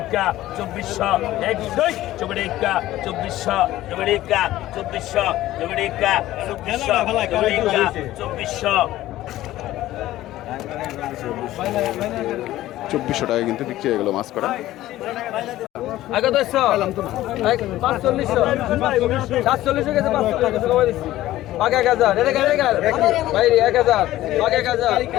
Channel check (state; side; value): quieter; right; 15.1 dB